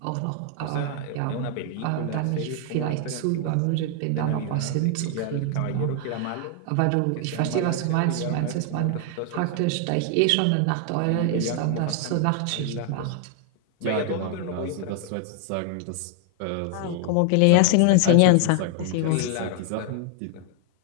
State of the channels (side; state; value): both; different; correlation 0.00